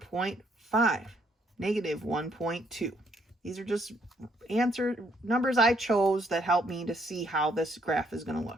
-1.2? These are just numbers I chose that help me to see how this graph is going to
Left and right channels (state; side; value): normal; both; correlation 0.70